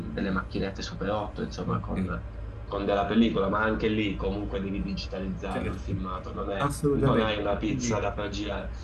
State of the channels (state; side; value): identical; both; correlation 1.00